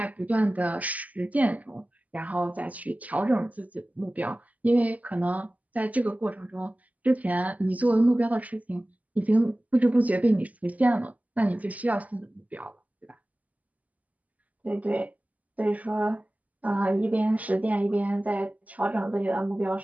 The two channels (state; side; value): late; left; 0.075 ms